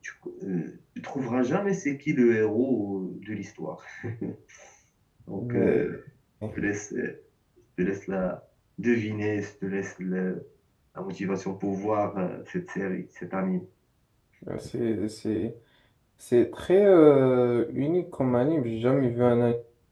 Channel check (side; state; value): both; identical; correlation 1.00